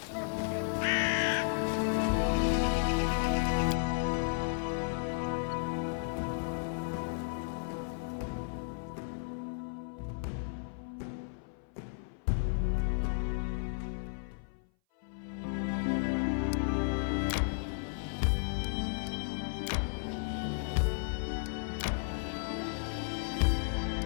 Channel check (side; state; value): right; silent; 55 dB below the other